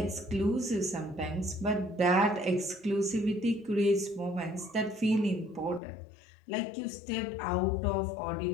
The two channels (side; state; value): right; drops out; at 5.8 s